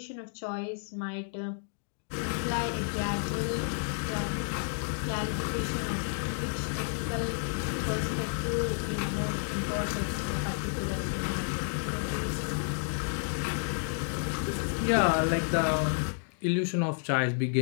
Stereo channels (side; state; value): right; silent; digital silence